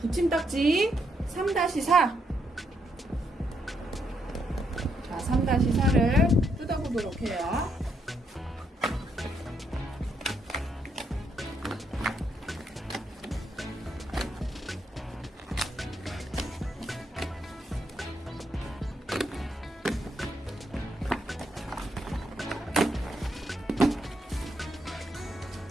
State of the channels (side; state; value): both; normal; correlation 0.77